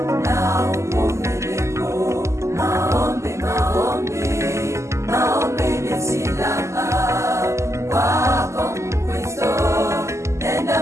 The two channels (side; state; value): left; late; 0.13 ms